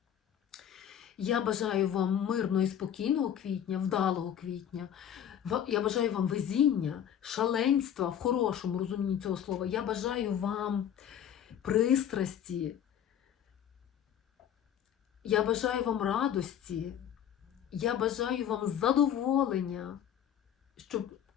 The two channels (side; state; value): right; quieter; 9.6 dB